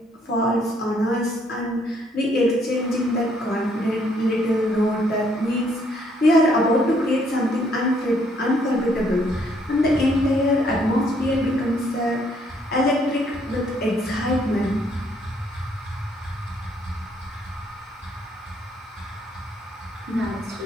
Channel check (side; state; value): both; normal; correlation 0.68